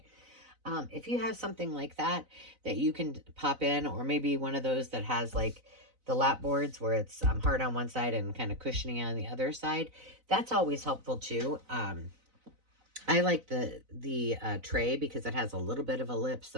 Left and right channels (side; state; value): left; late; 4.0 ms